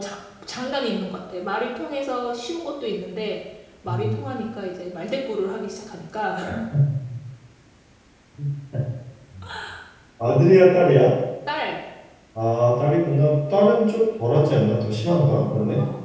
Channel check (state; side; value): identical; both; correlation 1.00